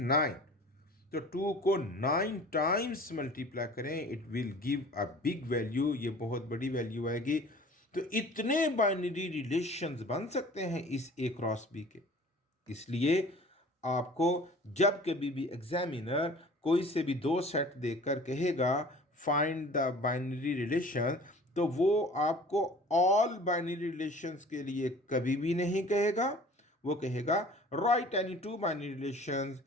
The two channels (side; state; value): both; normal; correlation 0.46